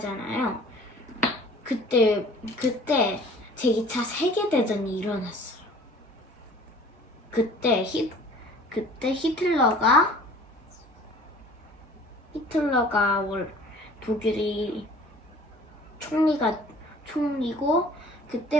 그때 제2차 세계대전이 일어났어요. 그때 히틀러가 독일이 총리고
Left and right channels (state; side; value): normal; both; correlation 0.48